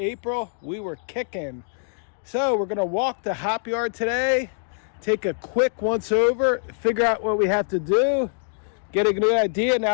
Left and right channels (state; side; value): silent; right; digital silence